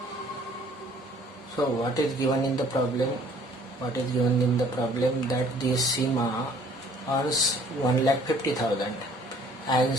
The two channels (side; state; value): both; normal; correlation 0.56